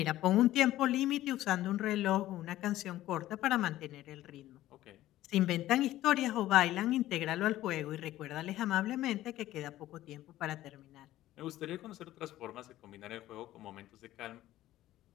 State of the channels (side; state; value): right; quieter; 14.7 dB